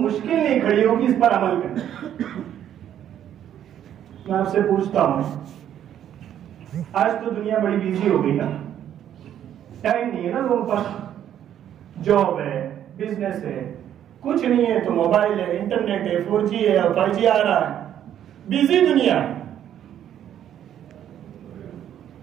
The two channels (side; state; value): left; quieter; 10.4 dB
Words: مشکل نہیں کھڑی ہوگی اس پر عمل کرنا. میں آپ سے پوچھتا ہوں، آج تو دنیا بڑی بیزی ہو گئی نا، ٹائم نہیں ہے نا لوگوں پر، جاب ہے، بزنس ہے، کچھ نہیں ہے تو موبائل ہے، انٹرنیٹ ہے، 4G ہے اور 5G آ رہا ہے، بیزی دنیا ہے.